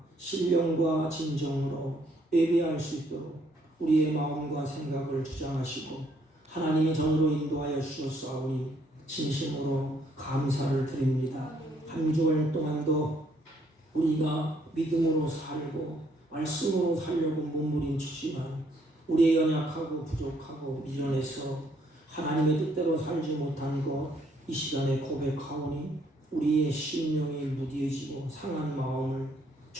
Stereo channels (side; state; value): both; normal; correlation 0.68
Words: 신령과 진정으로 예배할 수 있도록 우리의 마음과 생각을 주장하시고 하나님이 전으로 인도하여 주셨사오니 진심으로 감사를 드립니다. 한 주일 동안도 우리가 믿음으로 살고 말씀으로 살려고 몸부림치지만 우리의 연약하고 부족하고 미련해서 하나님의 뜻대로 살지 못한 것 이 시간에 고백하오니 우리의 심령이 무디해지고 상한 마음을